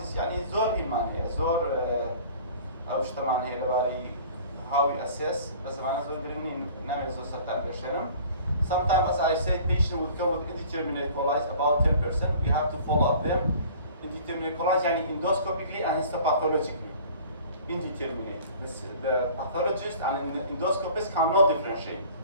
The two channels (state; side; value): inverted; both; correlation -0.47